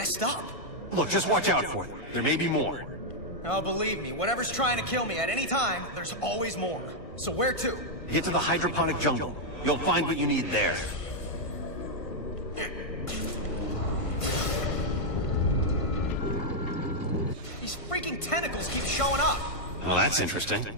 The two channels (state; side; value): late; right; 1.5 ms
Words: up. Look, just watch out for them. There may be more. Oh, believe me, whatever's trying to kill me at any time, there's always more. So where to? Get to the hydroponic jungle. You'll find what you need there. These freaking tentacles keep showing up. Well, that's interesting.